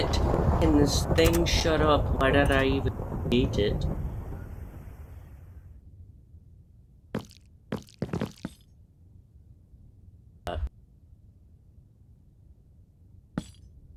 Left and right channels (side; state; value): both; identical; correlation 1.00